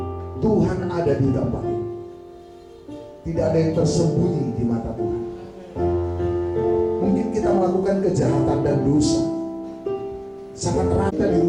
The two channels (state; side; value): identical; both; correlation 1.00